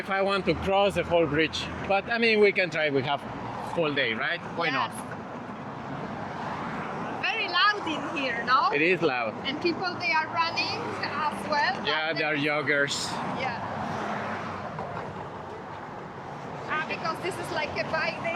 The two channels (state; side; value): identical; both; correlation 1.00